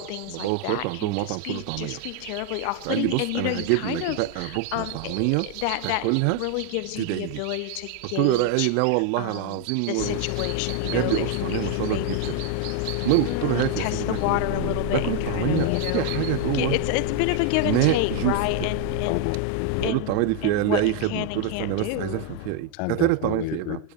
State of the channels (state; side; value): different; both; correlation 0.01